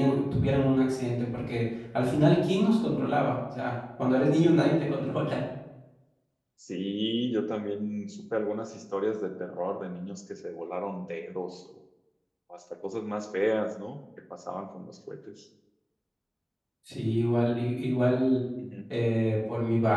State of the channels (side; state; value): both; identical; correlation 1.00